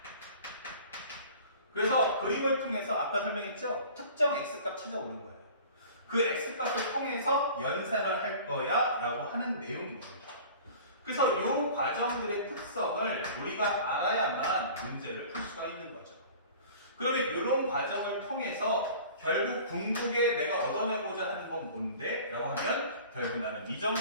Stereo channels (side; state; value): both; inverted; correlation -0.44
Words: 그래서 그림을 통해서 아까 설명했죠? 특정 x값 찾아오는 거예요. 그 x값을 통해서 연산을 할 거야 라고 하는 내용인 겁니다. 그래서 이 과정들의 특성을 우리가 알아야만 문제를 풀 수가 있는 거죠. 그러면 이런 과정을 통해서 결국 궁극에 내가 얻어내고자 하는 건 뭔데? 라고 하면 결국 나는